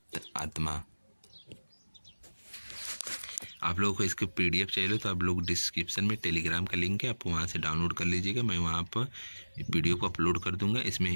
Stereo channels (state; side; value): inverted; both; correlation -1.00